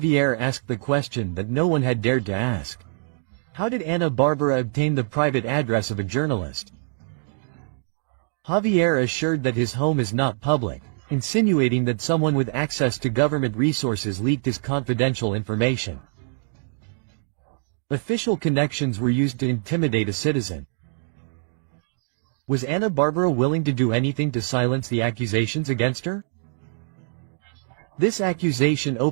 asked the question that no one had dared to ask. How did Ana Bárbara obtain the private address of a journalist? Javier assured that his home is not public, insinuating that someone with access to government resources leaked his confidential information. Official connections were used to intimidate a citizen. Was Ana Bárbara willing to do anything to silence the accusations against her? This accusation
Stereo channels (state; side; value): silent; left; digital silence